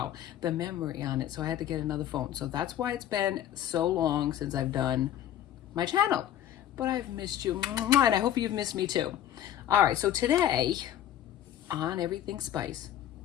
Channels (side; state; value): right; quieter; 11.3 dB